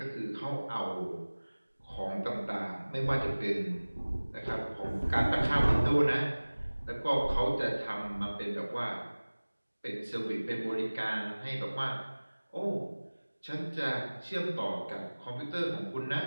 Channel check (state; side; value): inverted; both; correlation -1.00